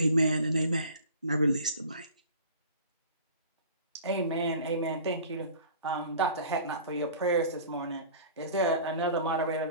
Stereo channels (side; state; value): both; inverted; correlation -0.44